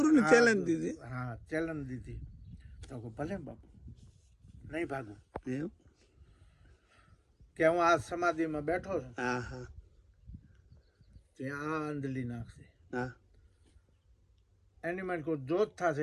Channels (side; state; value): both; identical; correlation 1.00